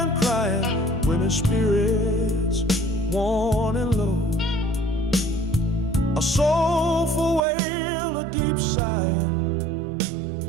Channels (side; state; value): left; drops out; at 7.4 s